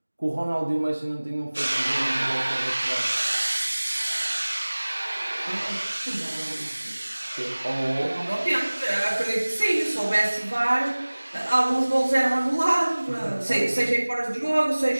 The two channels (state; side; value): inverted; both; correlation -1.00